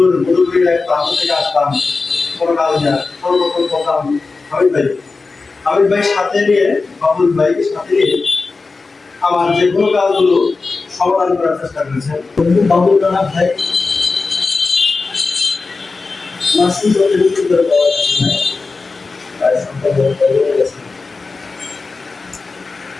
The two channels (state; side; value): quieter; right; 4.0 dB